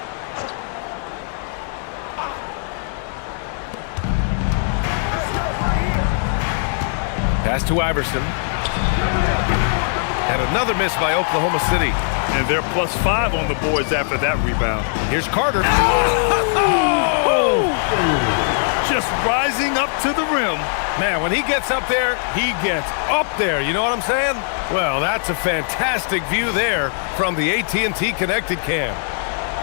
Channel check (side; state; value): right; silent; 66 dB below the other